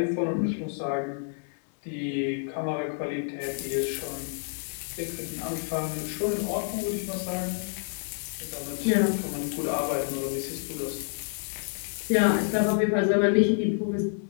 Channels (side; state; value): right; silent; digital silence